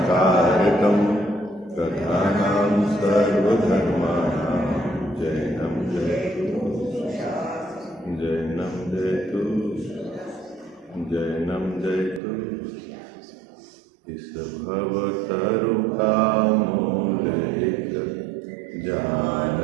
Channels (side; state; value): left; drops out; at 12.2 s